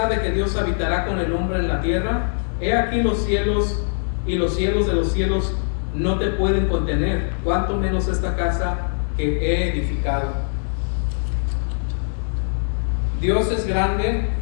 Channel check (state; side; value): silent; right; digital silence